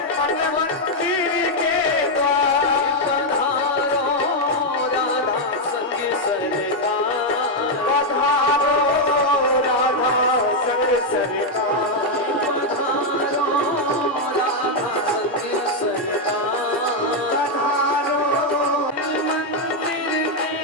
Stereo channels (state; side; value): normal; both; correlation 0.01